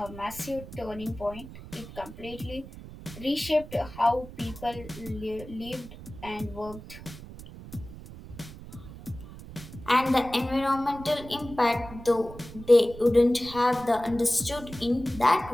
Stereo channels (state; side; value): noise; right; rumble, 15 dB below the sound